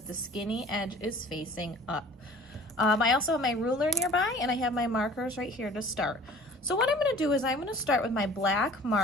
the skinny edge is facing up. I also have my ruler nearby and I have my markers right here to start. So what I'm going to do is I'm going to start with my black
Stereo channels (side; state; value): both; normal; correlation 0.47